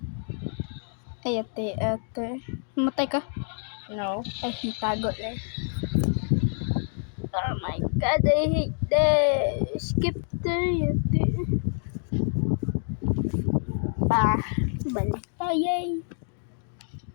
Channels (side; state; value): right; silent; 60 dB below the other